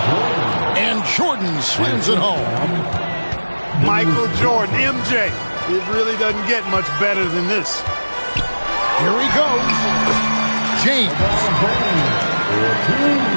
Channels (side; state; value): both; inverted; correlation -1.00